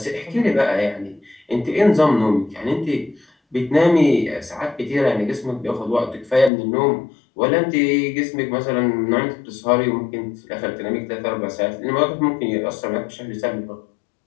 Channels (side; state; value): right; drops out; at 6.5 s